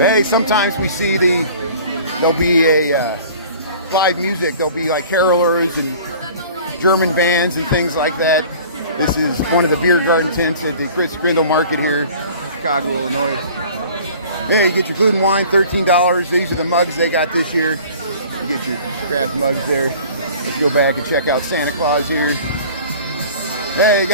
sometimes we see there'll be a live music. There'll be like carolers and German bands and things like that. This is one of the beer garden tents at the Christkindl market here, Chicago, Illinois. Yeah, you get your food and wine, $13. These are the mugs they got this year. You get your craft mugs there. Let's go back and check out Santa Claus here. Hey, you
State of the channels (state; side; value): inverted; both; correlation -0.46